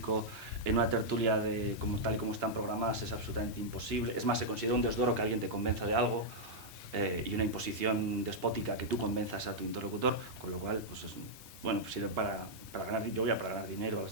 en una tertulia tal y como están programadas es absolutamente imposible. Es más, se considera un desdoro que alguien te convenza de algo y una imposición despótica que tú convenzas a tu interlocutor, con lo cual pues sirve para ganar. Yo voy a para ganar dinero a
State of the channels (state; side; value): normal; both; correlation -0.06